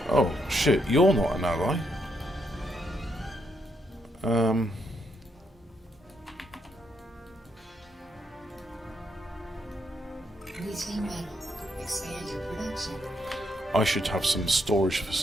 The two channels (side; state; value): both; normal; correlation 0.77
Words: Oh, shit, you're not an ally. Reclaim metal. Expand your production. I should have some storage